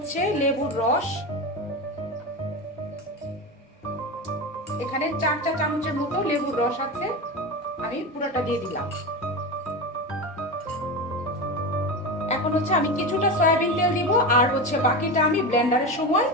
লেবুর রস, এখানে 4 চা চামচের মতো লেবুর রস আছে, আমি পুরোটা দিয়ে দিলাম। এখন হচ্ছে আমি কিছুটা সয়াবিন তেল দিব, আর হচ্ছে বাকিটা আমি ব্লেন্ডারের সময়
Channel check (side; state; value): both; normal; correlation 0.21